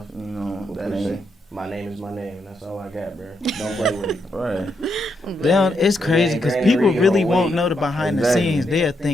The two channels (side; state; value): both; normal; correlation 0.80